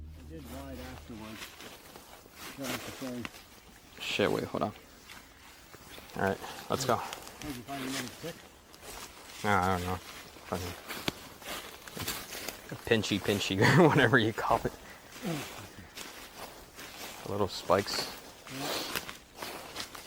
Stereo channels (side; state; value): both; identical; correlation 1.00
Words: I did ride afterwards. Shit, wait, hold on. Alright, let's go. Did you find another stick? No, I don't know. Fucking pinchy, or whatever you call it. Little spikes.